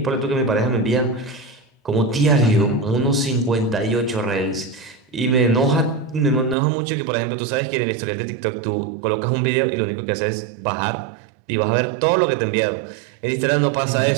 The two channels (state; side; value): drops out; left; at 6.6 s